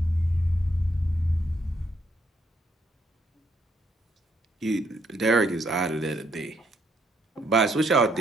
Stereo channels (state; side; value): normal; both; correlation 0.72